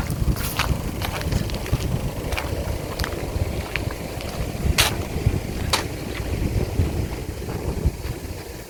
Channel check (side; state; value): both; identical; correlation 1.00